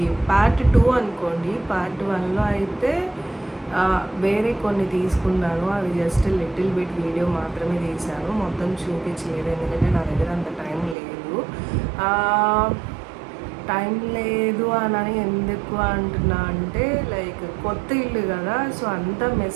పార్ట్ 2 అనుకోండి. పార్ట్ 1లో అయితే వేరే కొన్ని తీసుకున్నాను, అవి జస్ట్ లిటిల్ బిట్ వీడియో మాత్రమే తీశాను, మొత్తం చూపించలేదు ఎందుకంటే నా దగ్గర అంత టైం లేదు అని ఎందుకు అంటున్నా అంటే లైక్ కొత్త ఇల్లు కదా, సో అంతా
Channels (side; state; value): left; drops out; at 11.0 s